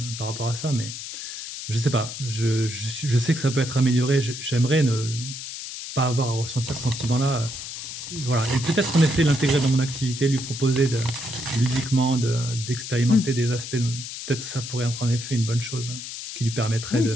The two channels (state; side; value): noise; left; hiss, 8 dB below the sound